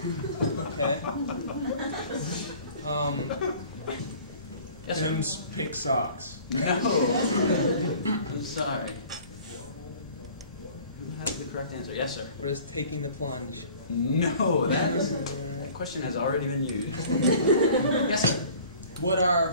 Okay. Yes, sir. Tim's pink socks. No. I'm sorry. Who has the correct answer? Yes, sir. What is taking the plunge? No, that question has already been used. Yes, sir. What are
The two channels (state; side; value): inverted; both; correlation -0.48